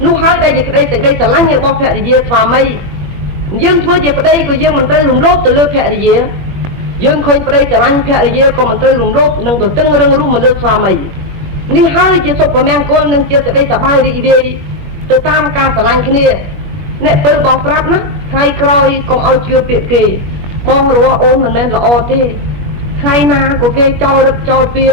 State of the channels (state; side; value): late; left; 21 ms